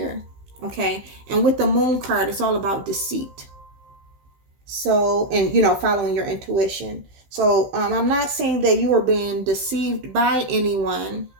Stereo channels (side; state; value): left; late; 16 ms